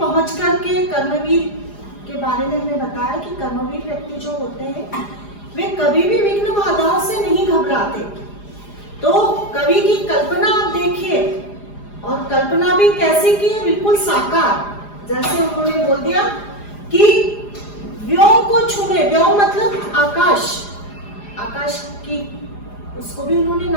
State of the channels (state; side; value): late; right; 4.9 ms